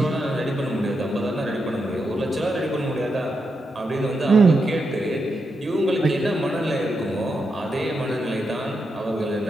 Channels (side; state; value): both; normal; correlation 0.85